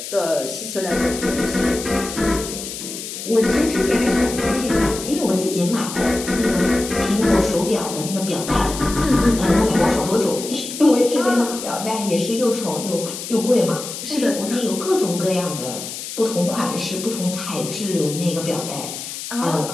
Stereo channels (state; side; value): noise; left; hiss, 8 dB below the sound